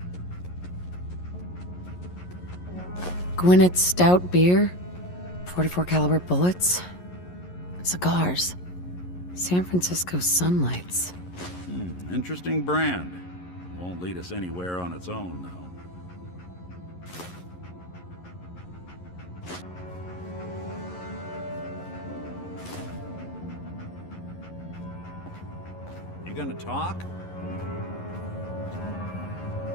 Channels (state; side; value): late; right; 11 ms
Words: Gwinnett Stout beer, 44 caliber bullets, cigars, San Francisco Sunlights. Interesting brand. Won't lead us anywhere on its own, though. You gonna talk?